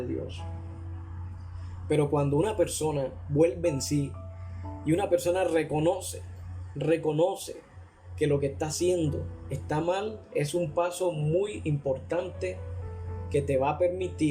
Dios. Pero cuando una persona vuelve en sí y una persona reconoce que lo que está haciendo está mal, es un paso muy importante que te va a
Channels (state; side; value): identical; both; correlation 1.00